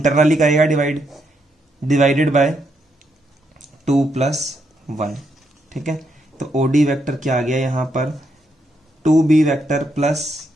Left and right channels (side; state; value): both; normal; correlation 0.78